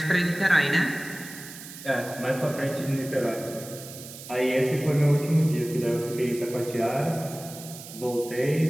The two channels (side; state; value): right; noise; hiss, 14 dB below the sound